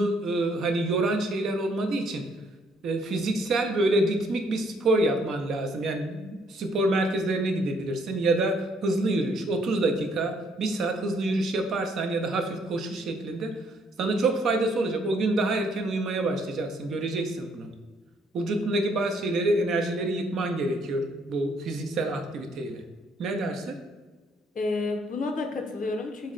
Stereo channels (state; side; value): normal; both; correlation 0.67